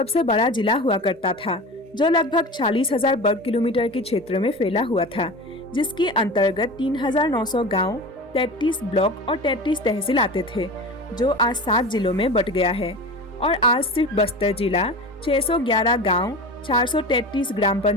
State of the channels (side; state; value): both; normal; correlation 0.31